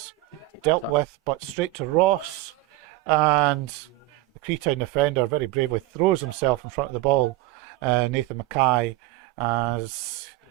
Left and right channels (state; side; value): quieter; left; 17.7 dB